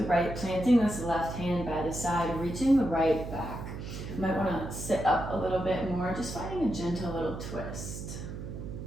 right, planting this left hand by the side, reaching the right back. You might want to sit up a little bit more, just finding a gentle little twist.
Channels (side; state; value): right; noise; hum, 8 dB below the sound